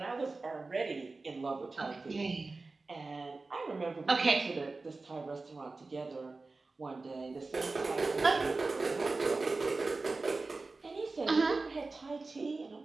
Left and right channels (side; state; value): left; quieter; 3.6 dB